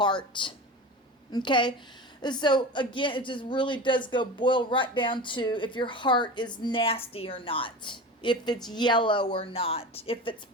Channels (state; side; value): normal; both; correlation 0.30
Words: Okay? So again, it just really does boil right down to if your heart is nasty or not. If it's yellow or not. If it's